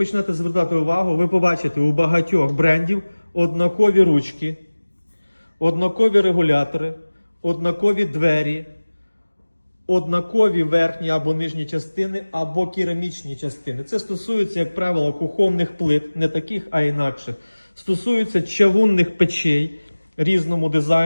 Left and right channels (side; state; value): both; inverted; correlation -1.00